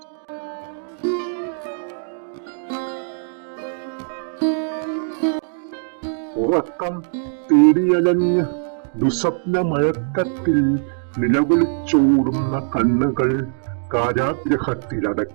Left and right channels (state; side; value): silent; left; digital silence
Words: ഉറക്കം തേടിയലഞ്ഞ് ദുസ്വപ്നമയക്കത്തിൽ നിലവിളിച്ചോടുന്ന കണ്ണുകൾ